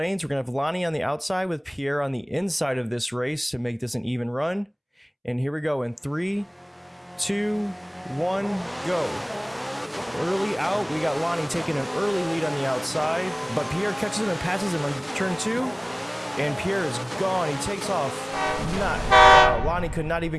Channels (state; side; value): identical; both; correlation 1.00